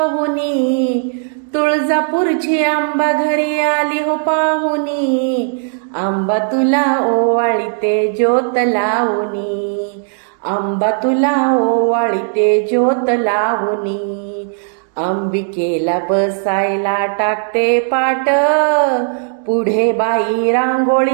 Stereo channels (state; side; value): silent; left; 69 dB below the other